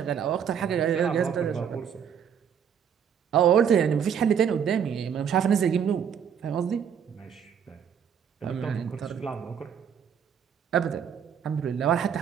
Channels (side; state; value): left; quieter; 7.9 dB